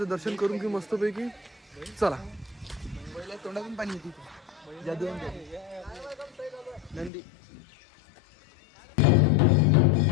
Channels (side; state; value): right; drops out; at 7.1 s